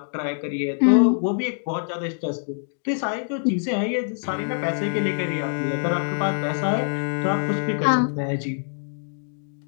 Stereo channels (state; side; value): silent; right; digital silence